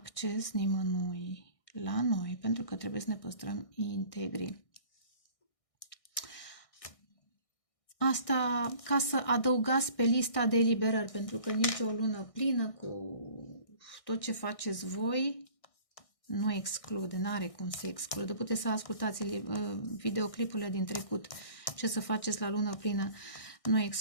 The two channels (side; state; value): right; late; 1.6 ms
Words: nimănui la noi, pentru că trebuie să ne păstrăm integri. Asta ca să adăugați pe lista de eliberări, pentru că nici o lună plină cu tot ce faceți voi nu exclude, n-are cum să exclude. Puteți să ascultați videoclipurile din trecut, ce să faceți la lună plină, nu